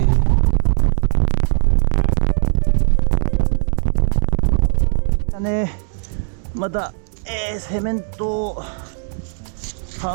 また、セメントを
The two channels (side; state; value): left; silent; digital silence